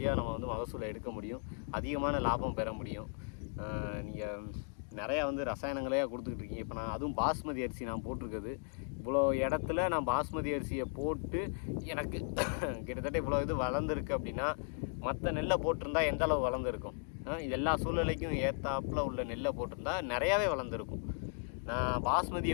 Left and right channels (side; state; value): right; silent; 54 dB below the other